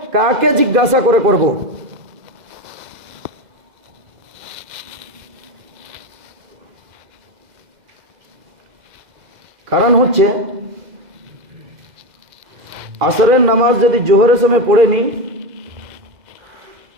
কাকে জিজ্ঞাসা করে করব। কারণ হচ্ছে আসরের নামাজ যদি জোহরের সময় পড়ে নি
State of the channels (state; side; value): late; left; 2.0 ms